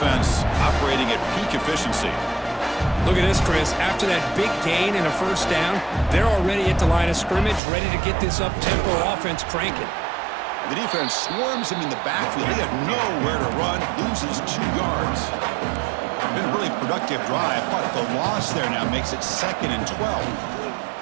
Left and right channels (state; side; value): drops out; left; at 7.6 s